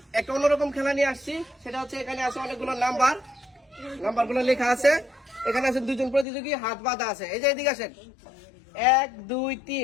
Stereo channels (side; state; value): right; drops out; at 6.2 s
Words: একটা অন্যরকম খেলা নিয়ে আসছি। সেটা হচ্ছে এখানে আছে অনেকগুলো নাম্বারগুলো লেখা আছে। এখানে আছে দুজন প্রতিযোগী, হাত বাঁধা আছে। এই যে এদিকে আসেন, 1 2